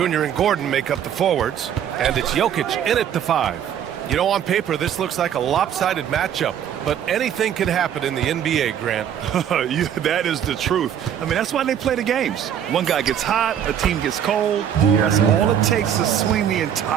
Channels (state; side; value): quieter; left; 9.4 dB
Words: and Gordon make up the forwards, and it's Jokic in at the 5. You know, on paper, this looks like a lopsided matchup, but anything can happen in the NBA, Grant. That is the truth. I mean, that's why they play the games. One guy gets hot, a team gets cold. That's all it takes to swing the